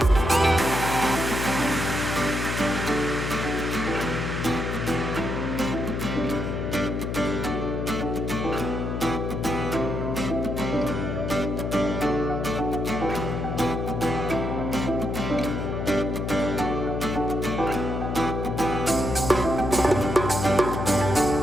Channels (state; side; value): noise; left; hum, 2 dB below the sound